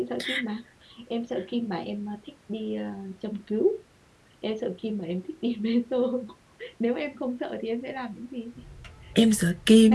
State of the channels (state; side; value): identical; both; correlation 1.00